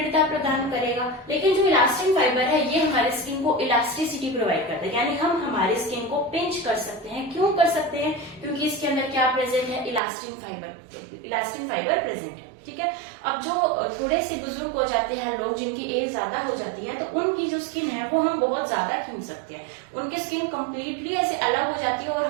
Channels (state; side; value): drops out; left; at 10.0 s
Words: प्रदान करेगा, लेकिन जो इलास्टिन फाइबर है ये हमारे स्किन को इलास्टिसिटी प्रोवाइड करता है, यानी हम हमारे स्किन को पिंच कर सकते हैं। क्यों कर सकते हैं, क्योंकि इसके अंदर क्या प्रेजेंट है, इलास्टिन फाइबर प्रेजेंट है, ठीक है। अब जो थोड़े से बुजुर्ग हो जाते हैं लोग, जिनकी एज ज्यादा हो जाती है, तो उनकी जो स्किन है वो हम बहुत ज्यादा खींच सकते हैं, उनकी स्किन कंप्लीटली ऐसे अलग हो जाती है और